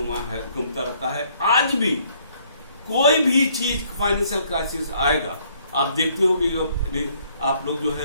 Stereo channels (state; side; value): inverted; both; correlation -0.65